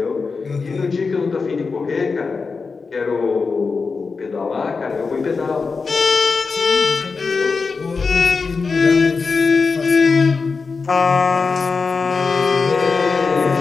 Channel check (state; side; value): quieter; right; 4.6 dB